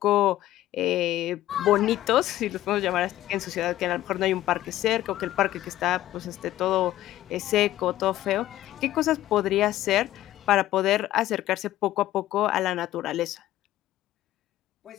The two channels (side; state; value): right; quieter; 14.3 dB